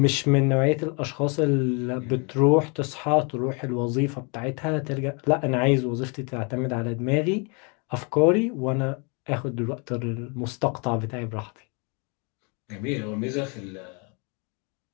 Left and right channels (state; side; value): quieter; right; 34.0 dB